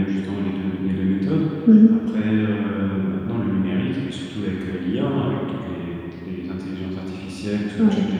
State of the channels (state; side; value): identical; both; correlation 1.00